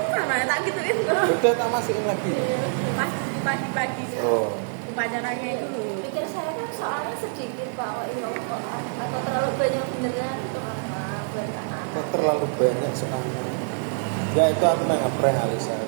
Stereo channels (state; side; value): silent; left; 61 dB below the other